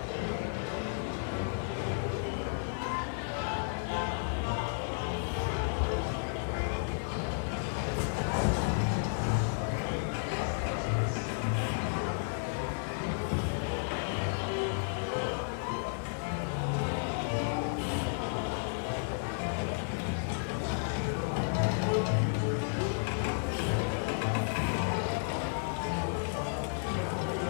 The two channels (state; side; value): silent; right; digital silence